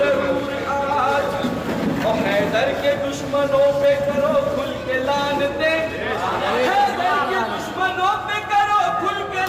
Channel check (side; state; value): both; identical; correlation 1.00